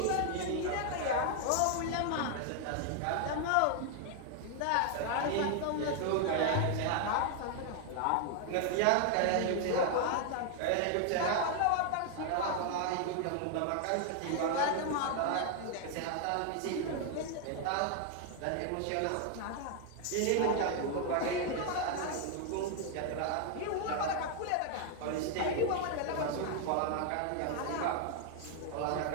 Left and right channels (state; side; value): different; both; correlation 0.00